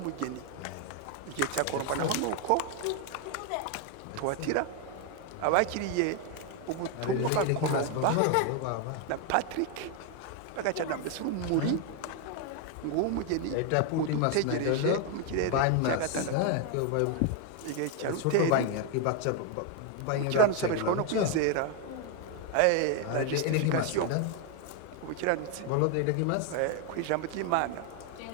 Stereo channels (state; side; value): different; both; correlation 0.01